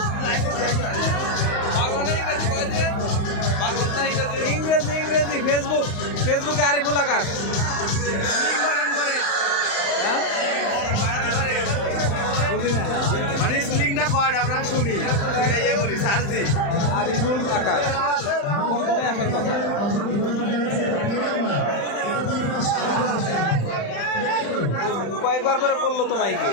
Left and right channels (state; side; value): late; right; 35 ms